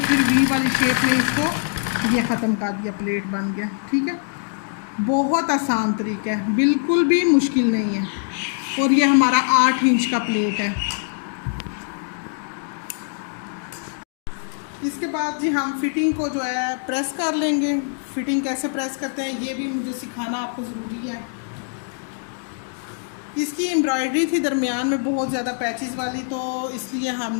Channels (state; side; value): silent; right; digital silence